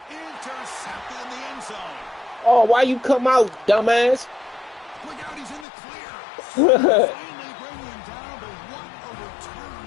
Intercepted in the end zone. Oh, why you come out, dumbass? Look out, he's in the clear. Finally bringing him down, but what a return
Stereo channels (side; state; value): right; drops out; at 5.7 s